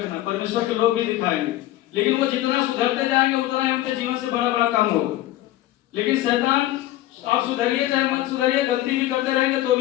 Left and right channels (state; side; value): quieter; right; 15.3 dB